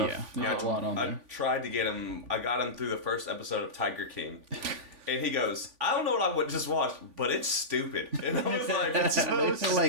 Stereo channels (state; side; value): late; left; 3.5 ms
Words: Yeah, there's a lot on I there. tried to get him. I got him through the first episode of Tiger King. And he goes, I don't know what I would just watch, but it's stupid. And I was like, it's so